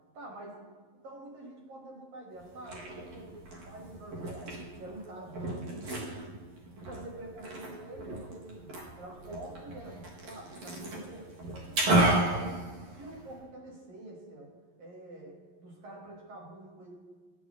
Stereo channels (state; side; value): late; left; 11 ms